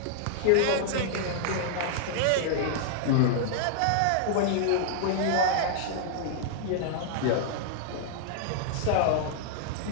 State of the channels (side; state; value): both; different; correlation -0.01